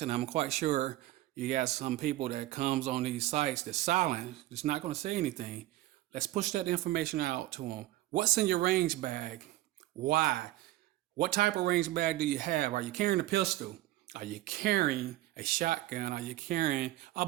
I'm quite sure you got some people that comes on these sites that's silent, that's not going to say anything. Let's push that information out to them. What's in your range bag? Why? What type of range bag do you have? Are you carrying a pistol? Are you carrying a shotgun? Are you carrying a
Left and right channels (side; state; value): left; quieter; 16.1 dB